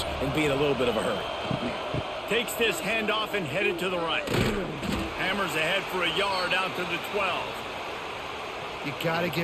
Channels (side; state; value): both; identical; correlation 1.00